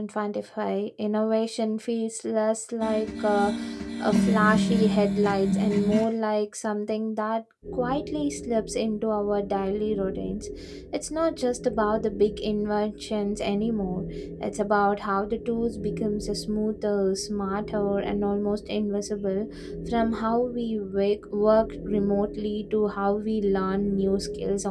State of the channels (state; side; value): identical; both; correlation 1.00